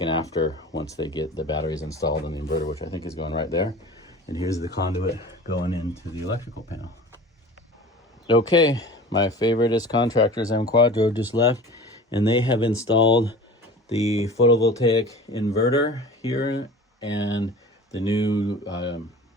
an after once they get the batteries installed and the inverter, which I think is going right there. And here's the conduit going into the electrical panel. Okay, my favoriteest contractors, M Quadro, just left, and they have installed the photovoltaic inverter here and the new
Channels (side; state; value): both; normal; correlation 0.39